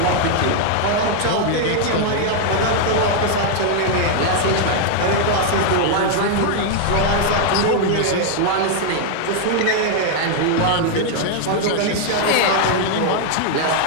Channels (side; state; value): both; different; correlation 0.00